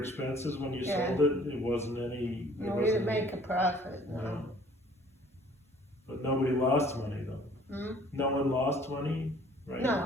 when you sold it? It wasn't any... No, we didn't make a profit, no. But nobody lost money though? No one lost money? Right?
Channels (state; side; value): normal; both; correlation 0.55